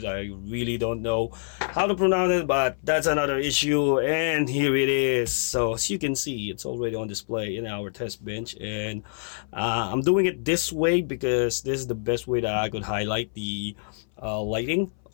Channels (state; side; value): silent; right; 59 dB below the other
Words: I really don't know how to pronounce it, but that's another issue. And here it is. So as you can see, it's already on display in our test bench, and I'm doing it this way because this is the best way that I could highlight the lighting